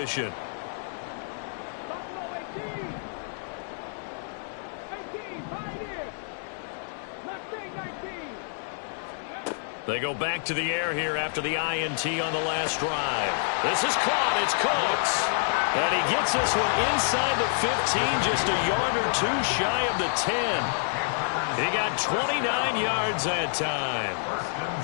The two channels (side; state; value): right; silent; 59 dB below the other